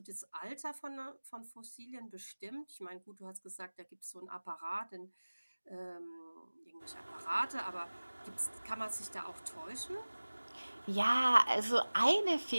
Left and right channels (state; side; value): inverted; both; correlation -1.00